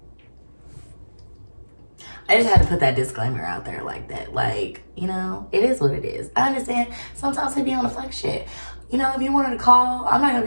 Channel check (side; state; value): both; inverted; correlation -1.00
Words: I just had to put that disclaimer out there like that. Like, you know, it is what it is. I understand sometimes they be on the fuck shit. You know, if you wanted to call, I'm not gonna